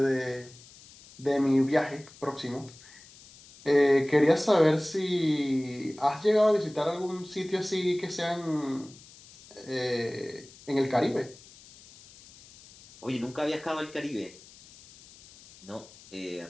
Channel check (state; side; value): noise; left; hiss, 22 dB below the sound